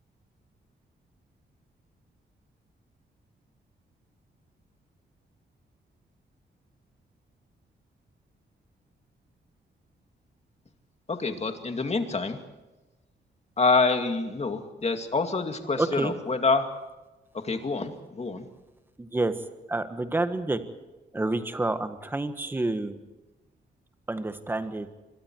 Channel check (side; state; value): both; normal; correlation 0.46